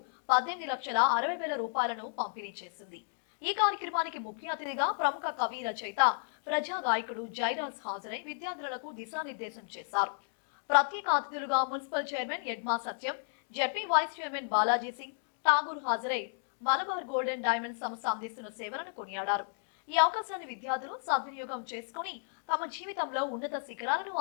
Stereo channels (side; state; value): right; silent; digital silence